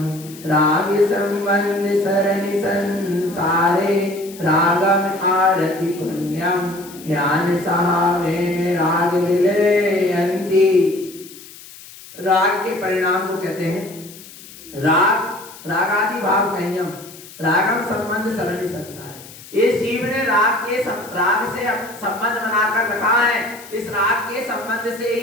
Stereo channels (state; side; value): noise; left; hiss, 18 dB below the sound